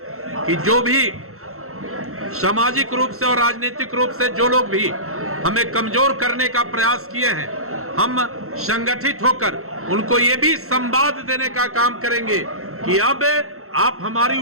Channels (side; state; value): left; late; 0.63 ms